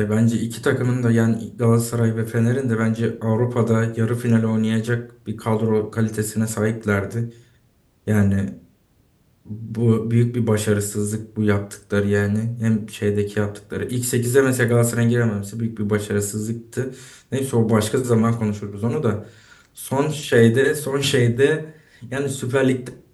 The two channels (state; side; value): identical; both; correlation 1.00